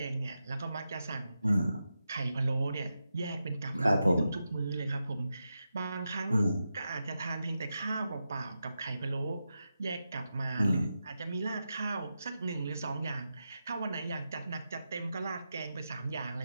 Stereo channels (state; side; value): inverted; both; correlation -0.89